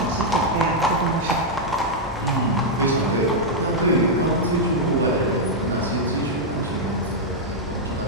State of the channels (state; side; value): normal; both; correlation -0.03